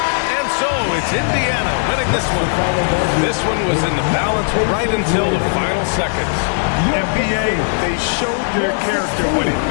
And so it's Indiana winning this one. This one was in the balance right until the final seconds. NBA, they showed their character when it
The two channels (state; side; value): silent; right; 68 dB below the other